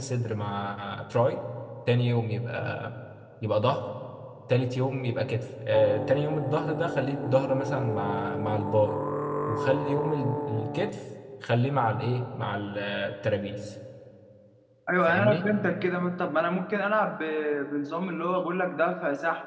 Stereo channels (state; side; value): identical; both; correlation 1.00